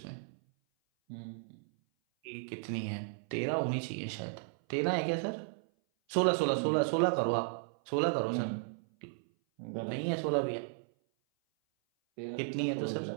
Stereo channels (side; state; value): left; silent; 55 dB below the other